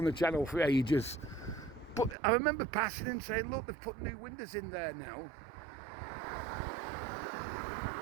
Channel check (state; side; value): drops out; left; at 2.1 s